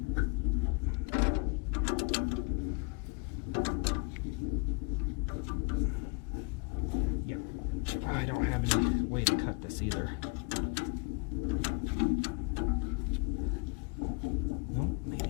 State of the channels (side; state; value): right; quieter; 30.8 dB